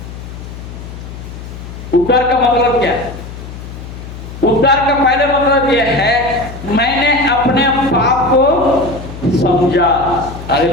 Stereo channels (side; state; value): left; noise; hum, 12 dB below the sound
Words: उद्धार का मतलब क्या है? उद्धार का पहले मतलब यह है मैंने अपने पाप को समझा।